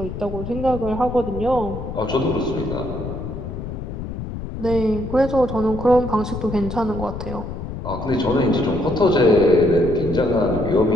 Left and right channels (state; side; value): noise; left; rumble, 7 dB below the sound